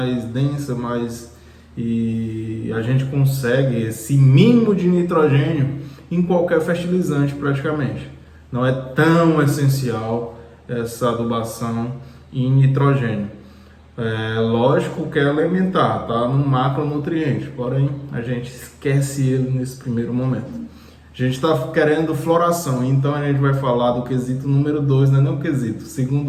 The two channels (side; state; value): both; identical; correlation 1.00